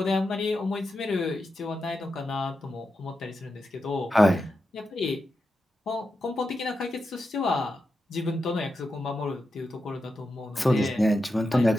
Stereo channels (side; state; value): both; normal; correlation 0.88